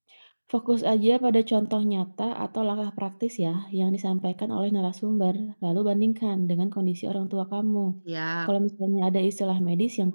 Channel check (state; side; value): inverted; both; correlation -1.00